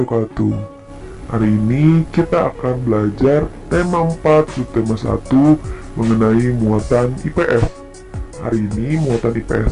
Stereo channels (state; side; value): identical; both; correlation 1.00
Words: Hari ini kita akan belajar tema 4 subtema 1 mengenai muatan IPS. Hari ini muatan